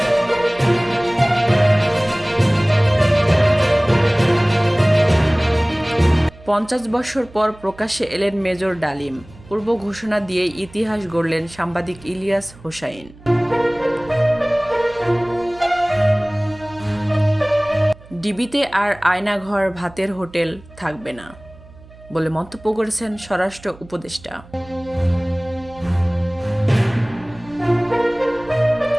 পঞ্চাশ বছর পর প্রকাশ্যে এলেন মেজর ডালিম। পূর্ব ঘোষণা দিয়ে ইতিহাস গড়লেন সাংবাদিক ইলিয়াস হোসাইন। ডিবিতে আর আয়নাঘর, ভাতের হোটেল থাকবে না বলে মন্তব্য করেছেন স্বরাষ্ট্র উপদেষ্টা।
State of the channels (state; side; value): noise; right; hum, 22 dB below the sound